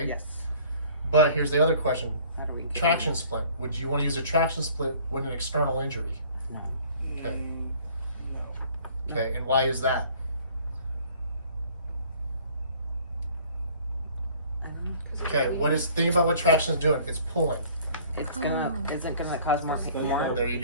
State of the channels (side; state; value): both; inverted; correlation -0.53